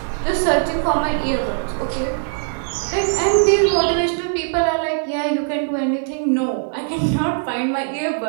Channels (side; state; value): left; silent; 65 dB below the other